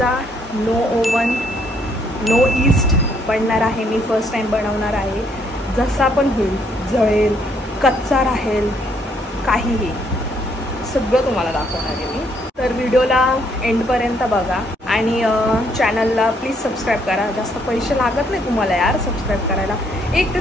no oven no yeast बनणार आहे। मी फर्स्ट टाइम बनवणार आहे। जसा पण होईल, जळेल, कच्चा राहील, काहीही सगळं तुम्हाला दाखवणार आहे मी। तर व्हिडिओला एंडपर्यंत बघा आणि चॅनलला प्लीज सबस्क्राईब करा। जास्त पैसे लागत नाही तुम्हाला यार सबस्क्राईब करायला। एक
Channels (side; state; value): both; normal; correlation 0.69